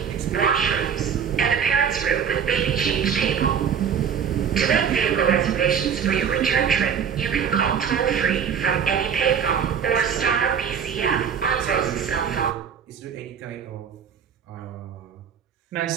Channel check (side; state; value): left; quieter; 7.5 dB